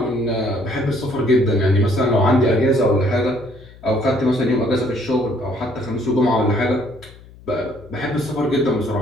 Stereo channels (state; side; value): noise; left; hum, 22 dB below the sound